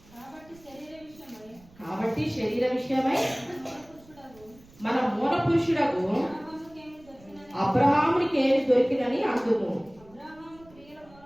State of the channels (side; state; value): right; noise; rumble, 25 dB below the sound